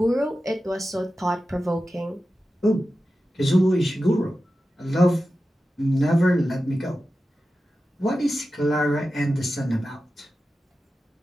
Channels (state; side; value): normal; both; correlation 0.93